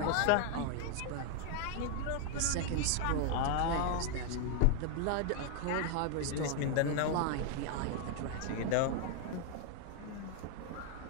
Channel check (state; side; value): different; both; correlation 0.00